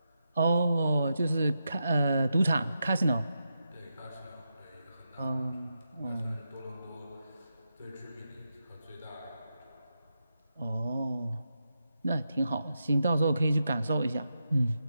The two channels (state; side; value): inverted; both; correlation -0.86